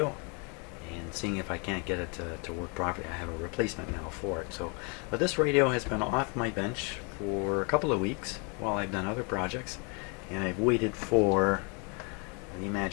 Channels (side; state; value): right; quieter; 34.4 dB